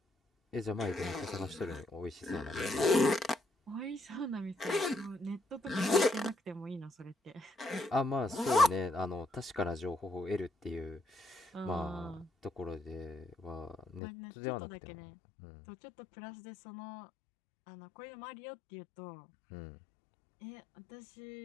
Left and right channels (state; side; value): drops out; right; at 14.0 s